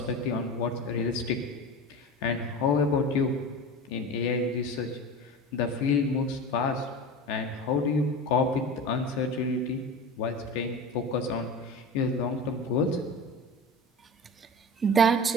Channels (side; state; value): both; normal; correlation 0.31